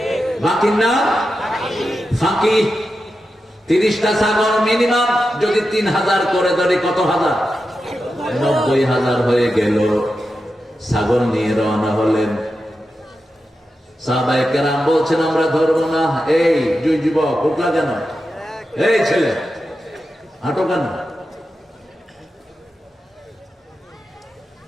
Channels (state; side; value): normal; both; correlation 0.90